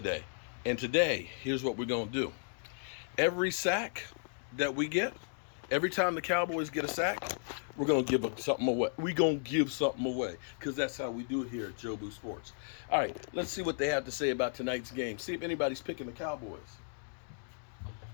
And today, here's what we're going to do. Every sack that we get, every time the Cowboys get a sack, we're going to give something away. We're going to give something away because that's how we do it here at Joe Boo Sports. All right, let's see what they have to say about tonight's game. See if anybody's picking the Cowboys.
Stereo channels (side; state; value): right; silent; digital silence